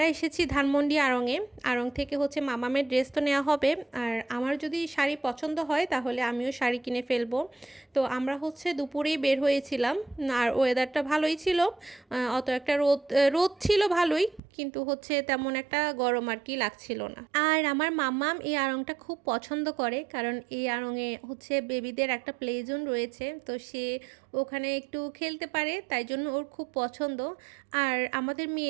এসেছি ধানমন্ডি আড়ংয়ে। আড়ং থেকে হচ্ছে মামামের ড্রেস তো নেওয়া হবে, আর আমার যদি শাড়ি পছন্দ হয় তাহলে আমিও শাড়ি কিনে ফেলবো। তো আমরা হচ্ছে দুপুরেই বের হয়েছিলাম, আর ওয়েদারটা ভালোই ছিল। অত একটা রোদ রোদ ছিল ভালোই, কিন্তু হচ্ছে তেমন একটা গরম আর কি লাগছিল না। আর আমার মাম্মাম এই আড়ংটা খুব পছন্দ করে, কারণ এই আড়ংয়ে হচ্ছে বেবিদের একটা প্লে জোন রয়েছে, তো সে ওখানে একটু খেলতে পারে, তাই জন্য ওর খুব পছন্দ। আর আমাদের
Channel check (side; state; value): left; drops out; at 14.4 s